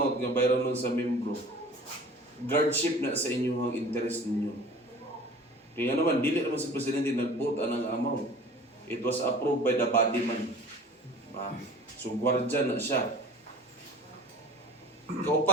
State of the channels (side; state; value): both; normal; correlation 0.42